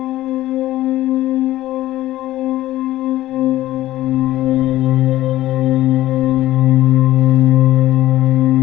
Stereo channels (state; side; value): quieter; right; 15.2 dB